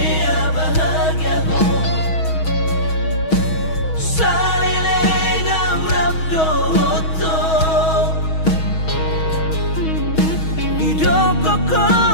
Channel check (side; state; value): right; late; 6.3 ms